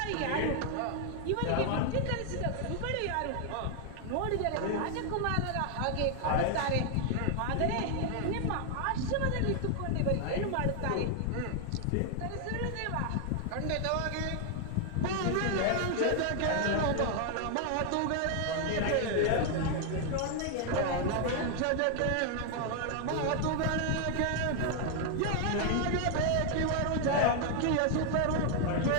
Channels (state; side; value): different; both; correlation 0.00